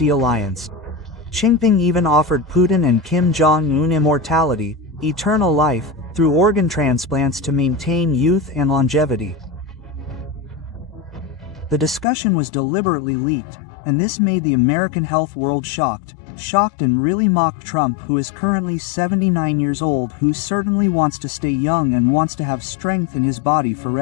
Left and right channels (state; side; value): drops out; right; at 12.1 s